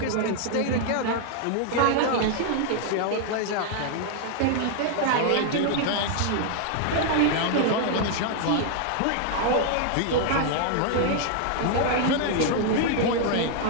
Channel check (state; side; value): different; both; correlation 0.00